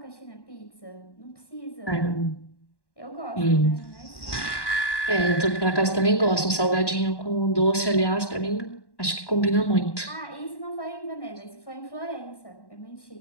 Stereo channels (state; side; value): late; right; 1.1 ms